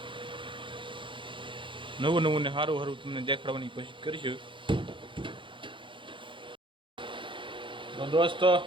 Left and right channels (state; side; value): late; left; 0.24 ms